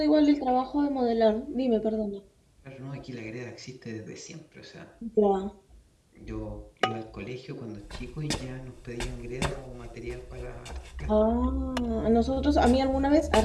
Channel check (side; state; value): both; identical; correlation 1.00